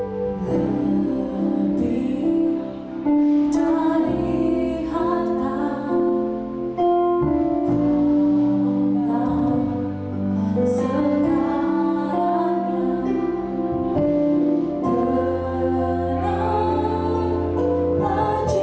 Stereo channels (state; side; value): identical; both; correlation 1.00